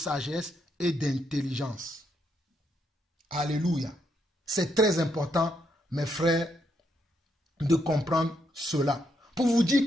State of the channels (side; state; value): both; normal; correlation 0.77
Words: et d'intelligence. Alléluia. C'est très important, mes frères, de comprendre cela. Pour vous dire